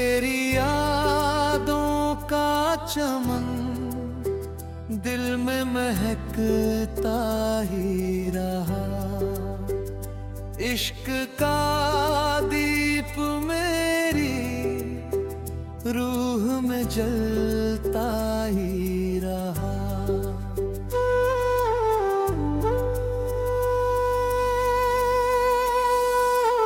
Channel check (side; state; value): both; identical; correlation 1.00